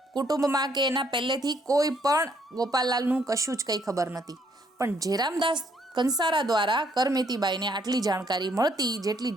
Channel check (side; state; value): both; normal; correlation 0.69